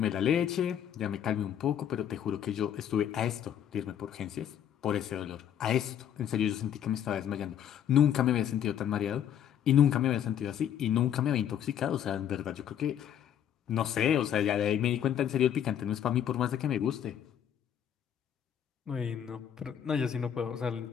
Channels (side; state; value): right; quieter; 9.5 dB